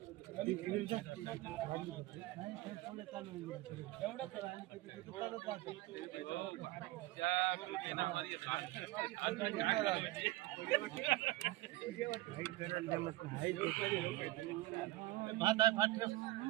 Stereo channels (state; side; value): quieter; left; 18.4 dB